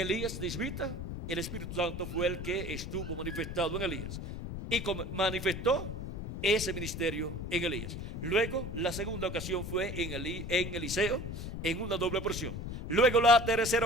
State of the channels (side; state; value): left; noise; rumble, 6 dB below the sound